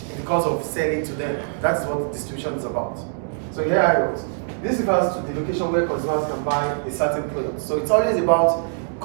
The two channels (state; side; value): silent; left; digital silence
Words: because of selling to them. That is what distribution is about. So here I wrote. This refers to the location where consumers can buy a certain product. So it's always about